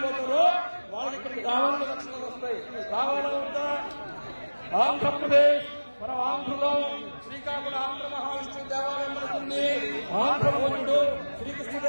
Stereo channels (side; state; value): both; inverted; correlation -1.00